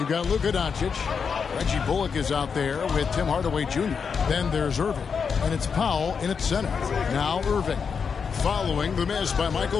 got Luka Doncic. Reggie Bullock is out there with Tim Hardaway Jr. Then there's Irving, and it's Powell in at center. Now Irving, following the miss by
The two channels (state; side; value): quieter; right; 6.1 dB